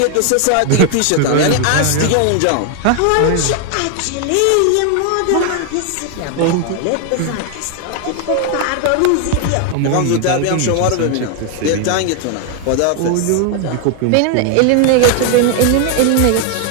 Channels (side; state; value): both; different; correlation 0.00